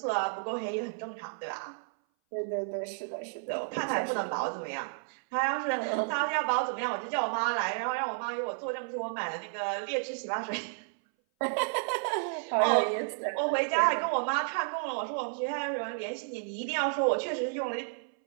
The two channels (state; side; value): silent; left; 57 dB below the other